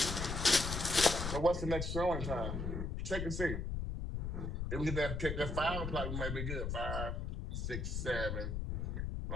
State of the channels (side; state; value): left; noise; rumble, 2 dB below the sound